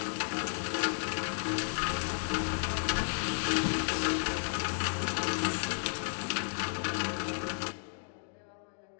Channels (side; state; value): right; silent; digital silence